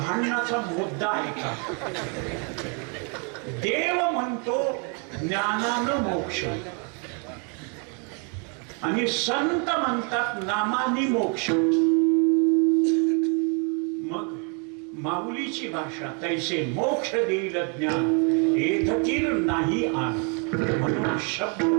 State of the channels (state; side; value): quieter; left; 37.1 dB